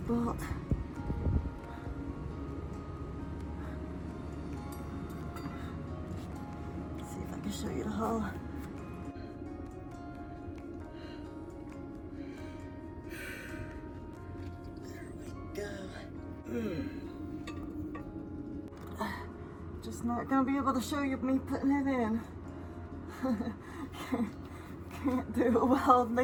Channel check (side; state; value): both; identical; correlation 1.00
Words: Bolt. Let's see if I can show you the hole. There we go. Just not gonna be able to show you me putting it in. Can't do it while holding